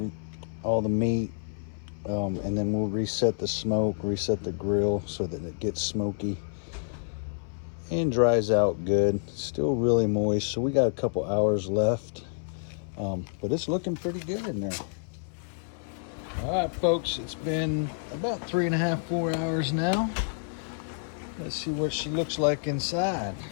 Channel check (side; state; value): right; silent; 59 dB below the other